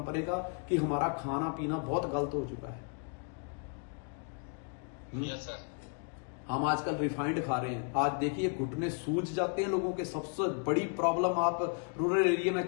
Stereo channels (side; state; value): right; quieter; 38.6 dB